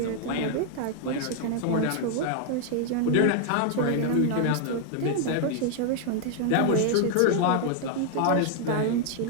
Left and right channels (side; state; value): both; different; correlation 0.00